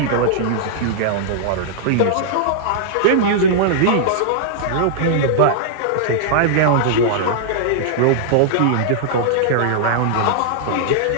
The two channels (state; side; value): different; both; correlation -0.01